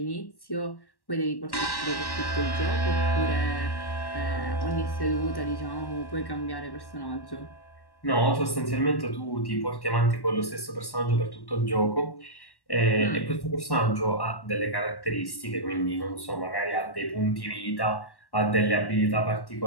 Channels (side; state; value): right; late; 1.1 ms